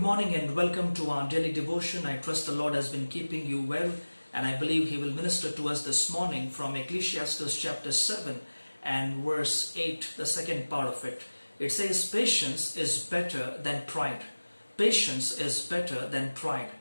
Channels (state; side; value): inverted; both; correlation -1.00